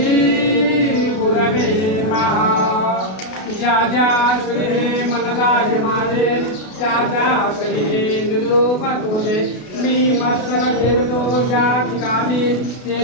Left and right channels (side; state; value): right; late; 32 ms